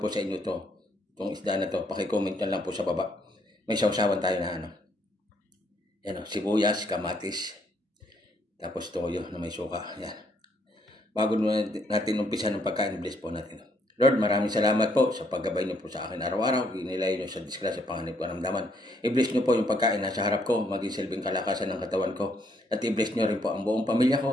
sa inyo to? Itong isda na to, pakicomment na lang po sa baba. May sausawan tayo na Yan sibuyas, kamatis. Tapos toyo na may suka. Yan. Bago natin umpisa ng pagkain, bless po natin. Lord, maraming salamat po sa paggabay niyo po sa akin araw-araw. Inilay niyo sa disgrasya, panganib, karamdaman. I-bless niyo po yung pagkain nasa harap ko, maging silbing kalakasan ng katawan ko. At i-bless niyo rin po ang buong pamilya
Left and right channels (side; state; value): both; normal; correlation 0.71